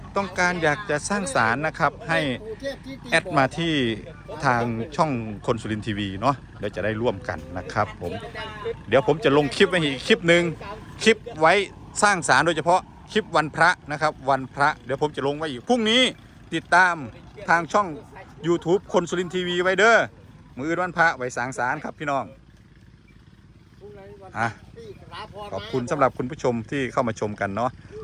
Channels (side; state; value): both; identical; correlation 1.00